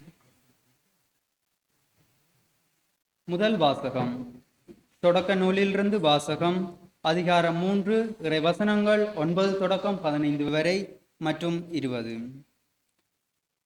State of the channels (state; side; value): identical; both; correlation 1.00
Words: முதல் வாசகம். தொடக்க நூலிலிருந்து வாசகம். அதிகாரம் 3, இறை வசனங்கள் 9 தொடக்கம் 15 வரை மற்றும் 20.